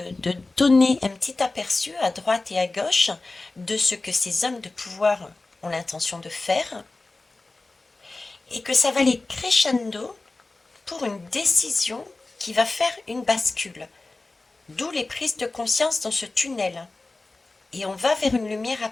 donner un petit aperçu à droite et à gauche de ce que ces hommes de pouvoir ont l'intention de faire, et que ça va aller crescendo pour une décision qui va faire une bascule. D'où les prises de conscience dans ce tunnel. Et on va vers une lumière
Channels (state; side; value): quieter; right; 3.3 dB